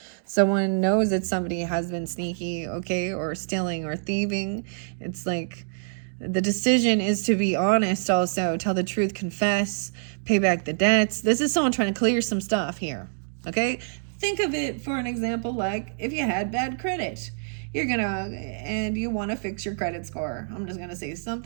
Someone knows that somebody has been sneaky, okay, or stealing or thieving. It's like the decision is to be honest, also tell the truth, confess, pay back the debts. This is someone trying to clear some stuff here, okay? Think of it for an example like if you had bad credit. And you want to fix your credit score. I'm just going to say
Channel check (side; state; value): left; silent; digital silence